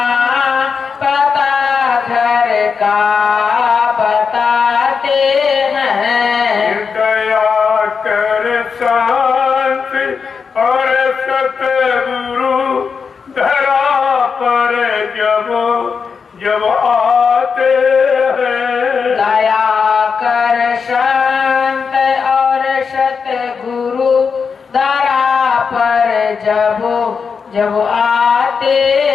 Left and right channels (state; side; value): quieter; right; 5.7 dB